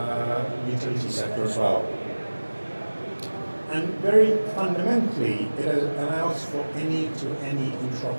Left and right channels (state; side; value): inverted; both; correlation -1.00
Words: utility sector as well. And very fundamentally, it allows for any-to-any